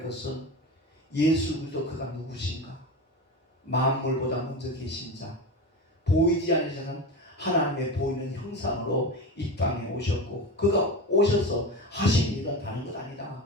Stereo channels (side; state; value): both; normal; correlation 0.25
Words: 것은 예수 그리스도 그가 누구신가? 만물보다 먼저 계신 자, 보이지 않으시는 하나님의 보이는 형상으로 이 땅에 오셨고 그가 오셔서 하신 일은 다른 것 아니다.